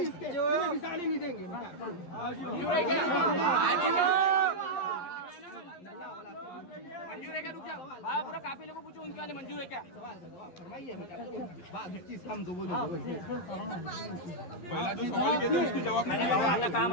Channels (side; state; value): right; late; 11 ms